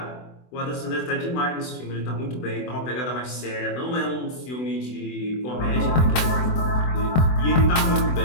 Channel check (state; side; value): late; right; 24 ms